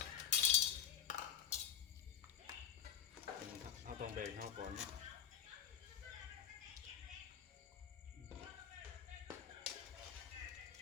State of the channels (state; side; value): quieter; right; 8.9 dB